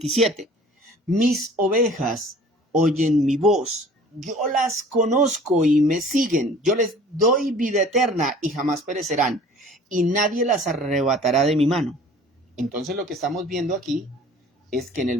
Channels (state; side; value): normal; both; correlation 0.48